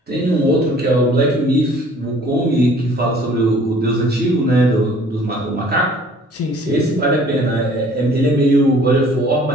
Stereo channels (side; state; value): both; normal; correlation 0.54